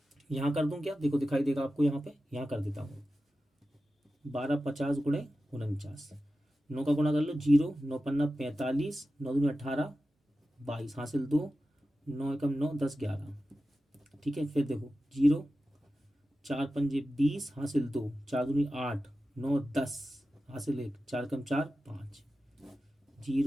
यहाँ कर दूं क्या, देखो दिखाई देगा आपको, यहाँ पे यहाँ कर देता हूँ, 12 50 गुणे 49, 9 का गुणा कर लो 0, 9 पन्ना 45, 9 दूनी 18, 22 हासिल 2, 9 एकम 9, 10 11, ठीक है। फिर देखो 0, 4 पंजे 20 हासिल 2, 4 दूनी 8, 9 10 हासिल 1, 4 एकम 4 5,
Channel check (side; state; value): both; normal; correlation 0.93